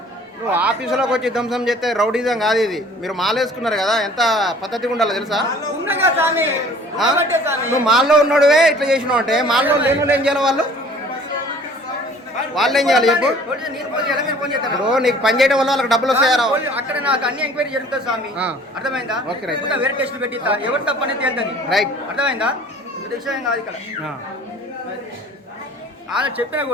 నువ్వు ఆఫీసులోకి వచ్చి ధ్వంసం చేస్తే రౌడీజం కాదు ఇది. మీరు మాలేసుకున్నారు కదా, ఎంత పద్ధతిగా ఉండాలో తెలుసా? ఉన్నగా స్వామి. ఉన్నబట్టే స్వామి. నువ్వు మాల్లో ఉన్నాడువే ఇట్లా చేసినావు అంటే మాల్లో లేని ఏం చేయాలి? వాళ్ళు ఏం చేయాలి చెప్పు? నేను ఫోన్ చేయాలా, మీరు ఫోన్ చేస్తారా? ఇప్పుడు నీకు పని చేయడం వల్ల వాళ్ళకి డబ్బులు వస్తాయారా? అక్కడ నాకు అన్ని ఎంక్వైరీ జరుగుతుంది స్వామి. అర్థమైందా? Okay, right. ఇంకా వేరే టెస్ట్ పెట్టిస్తా, ఎవరు తప్పనేది తేలుతుంది. రైట్. అర్థమైందా? ఇది విషయం కాదు ఇక్కడ. ఆయన చెప్పినా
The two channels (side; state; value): both; normal; correlation 0.51